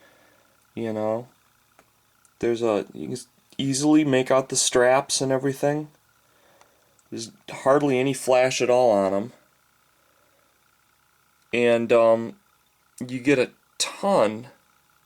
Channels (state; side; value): identical; both; correlation 1.00